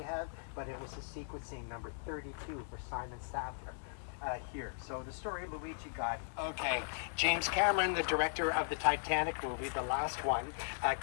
have, but it was the sequencing number 32 for Simon Sattler. Here. So the story of Luigi Gotti. Okay, James Cameron, the director of the Titanic movie, the last one,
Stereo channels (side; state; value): right; silent; digital silence